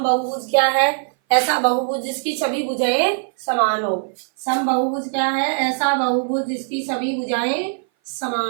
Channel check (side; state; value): left; silent; 58 dB below the other